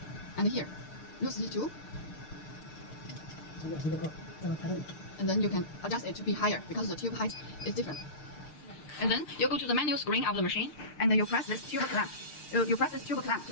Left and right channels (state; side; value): late; right; 6.6 ms